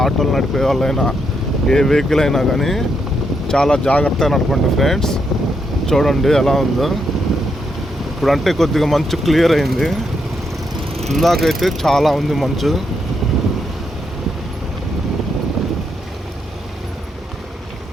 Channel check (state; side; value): normal; both; correlation 0.79